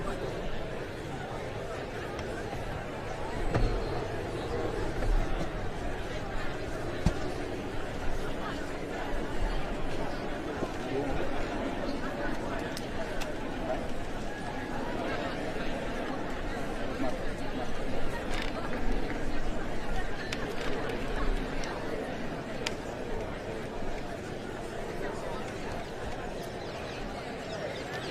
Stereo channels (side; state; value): both; identical; correlation 1.00